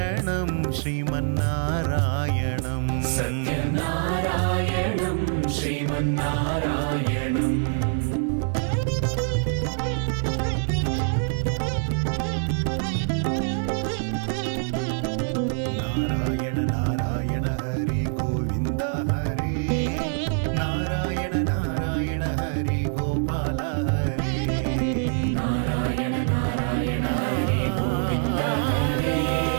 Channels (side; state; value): left; silent; 57 dB below the other